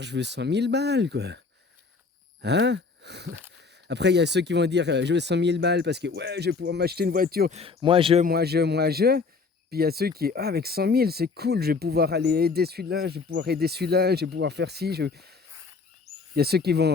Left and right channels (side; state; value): right; quieter; 4.5 dB